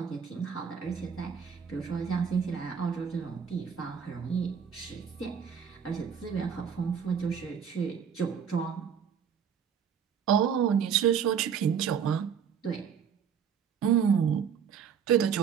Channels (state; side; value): quieter; left; 7.4 dB